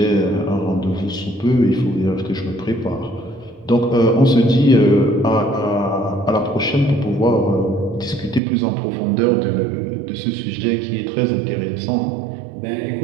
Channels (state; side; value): drops out; left; at 8.4 s